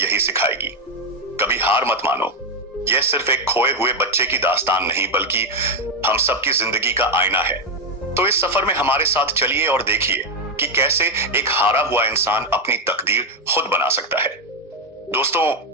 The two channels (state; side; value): normal; both; correlation 0.07